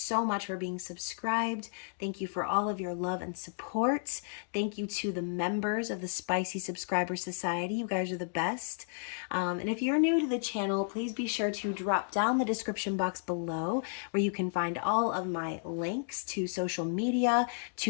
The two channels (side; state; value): right; silent; digital silence